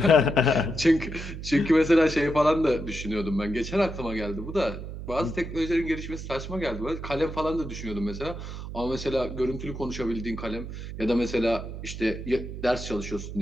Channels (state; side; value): noise; right; hum, 9 dB below the sound